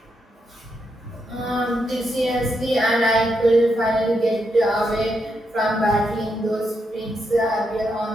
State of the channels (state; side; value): normal; both; correlation 0.82